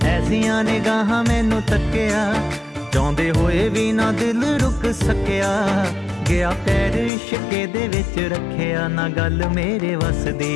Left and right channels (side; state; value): right; drops out; at 7.1 s